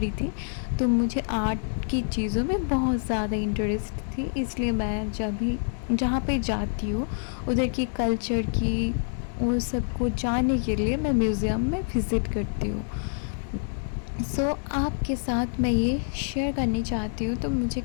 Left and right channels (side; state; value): right; silent; digital silence